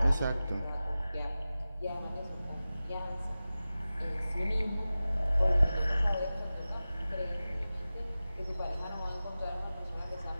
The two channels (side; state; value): both; inverted; correlation -0.95